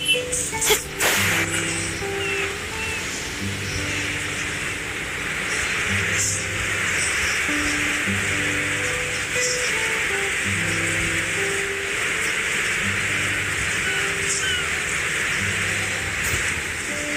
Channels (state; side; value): identical; both; correlation 1.00